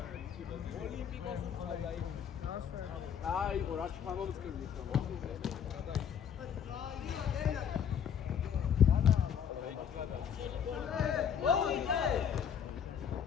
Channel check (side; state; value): right; quieter; 8.1 dB